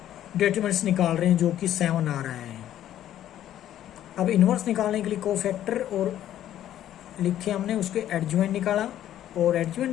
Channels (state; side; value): quieter; right; 11.8 dB